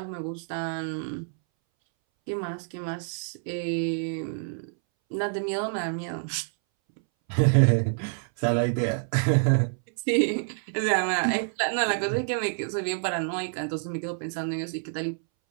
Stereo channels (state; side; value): silent; left; 60 dB below the other